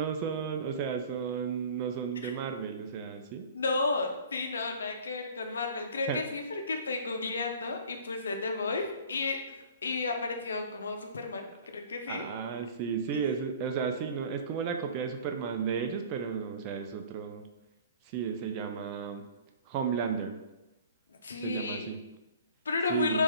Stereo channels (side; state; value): both; inverted; correlation -0.46